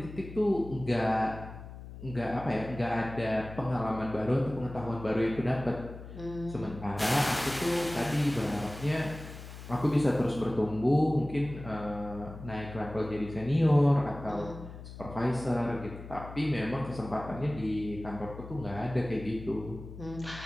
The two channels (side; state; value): left; noise; hum, 13 dB below the sound